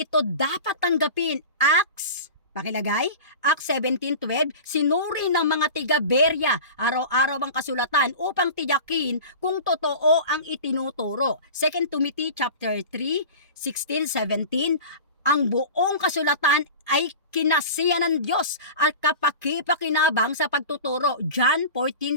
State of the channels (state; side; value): inverted; both; correlation -0.34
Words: dapat tanggapin. Acts 17:12, sinuri ng mga tiga-Berea araw-araw ang kasulatan upang tiyakin kung totoo ang itinuturo. 2 Timothy chapter 3:16-17, ang buong kasulatan ay kinasiya ng Diyos at kapakipakinabang sa pagtuturo. John